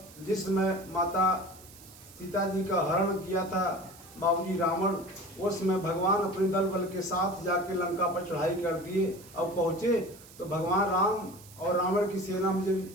जिस समय माता सीता जी का हरण किया था बाबूजी रावण। उस समय भगवान अपने दल बल के साथ जाके लंका पर चढ़ाई कर दिए। अब पहुंचे तो भगवान राम और रावण की सेना में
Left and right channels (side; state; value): right; noise; hiss, 21 dB below the sound